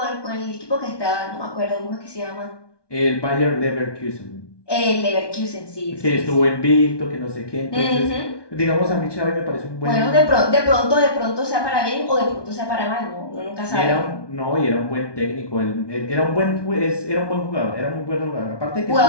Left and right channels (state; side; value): late; right; 1.2 ms